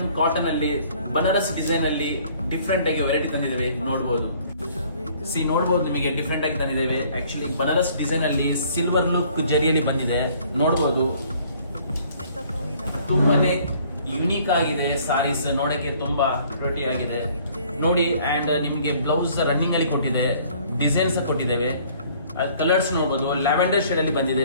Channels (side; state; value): both; inverted; correlation -0.57